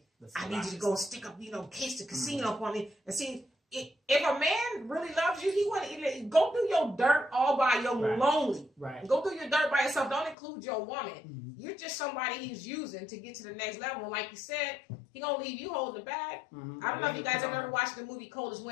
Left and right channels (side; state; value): right; drops out; at 10.4 s